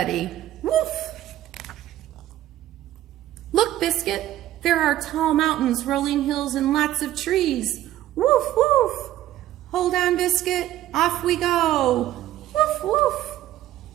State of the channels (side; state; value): left; quieter; 13.6 dB